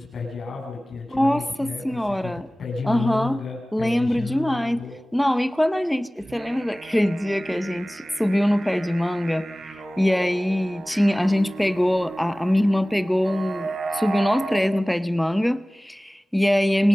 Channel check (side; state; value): both; normal; correlation 0.98